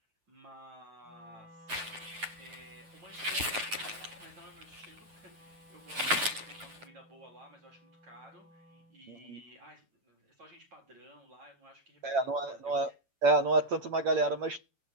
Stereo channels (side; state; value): left; late; 9.1 ms